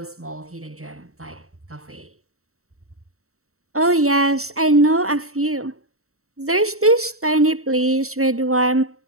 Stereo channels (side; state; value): left; late; 0.64 ms